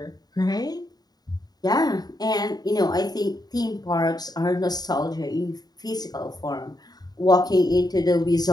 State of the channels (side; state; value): right; late; 0.19 ms